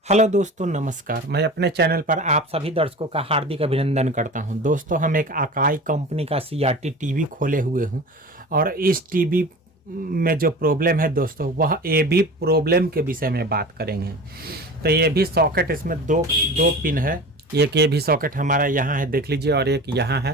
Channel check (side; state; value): both; normal; correlation 0.35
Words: Hello दोस्तों, नमस्कार। मैं अपने चैनल पर आप सभी दर्शकों का हार्दिक अभिनंदन करता हूं। दोस्तों, हम एक अकाई कंपनी का सीआरटी टीवी खोले हुए हूं और इस टीवी में जो प्रॉब्लम है दोस्तों, वह ए भी प्रॉब्लम के विषय में बात करेंगे। तो ये भी सॉकेट, इसमें दो पिन है। एक ये भी सॉकेट हमारा यहाँ है, देख लीजिए, और एक यहाँ